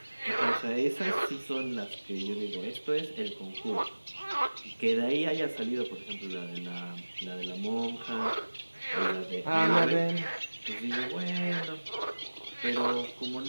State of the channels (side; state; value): both; inverted; correlation -1.00